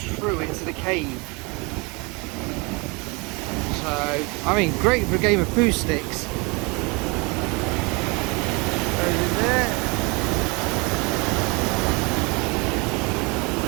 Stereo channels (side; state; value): left; quieter; 28.3 dB